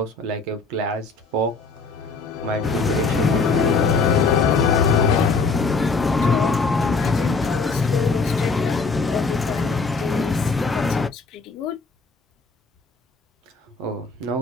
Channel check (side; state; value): right; quieter; 4.1 dB